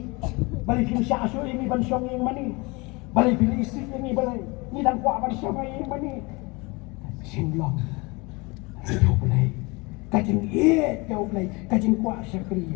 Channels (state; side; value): quieter; right; 26.2 dB